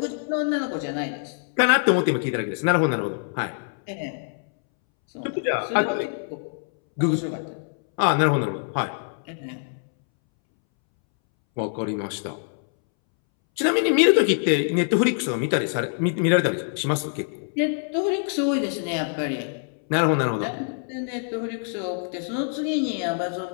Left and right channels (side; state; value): right; silent; 62 dB below the other